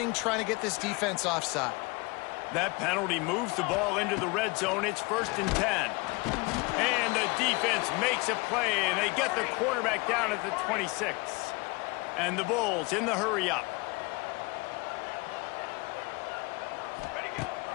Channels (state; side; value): quieter; right; 26.6 dB